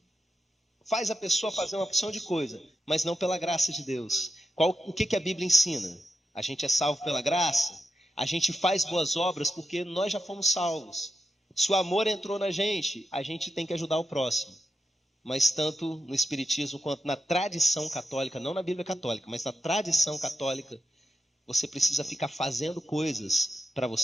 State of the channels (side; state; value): both; normal; correlation 0.88